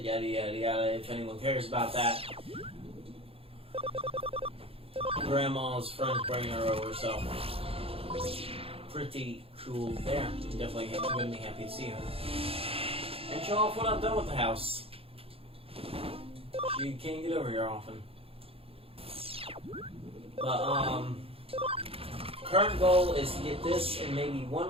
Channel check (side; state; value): left; late; 0.27 ms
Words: yada yada yada, if anyone cares about that. Grandma's friends bringing her over, so pretty cool there. Definitely gonna be happy to see her. And show off what I've done with the house. She can't get over here often. But, current goal is to get this and maybe one